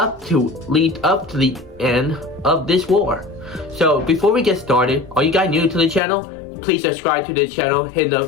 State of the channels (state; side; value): drops out; right; at 6.0 s